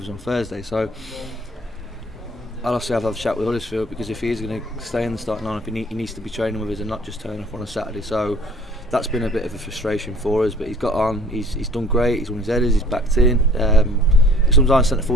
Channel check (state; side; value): normal; both; correlation 0.53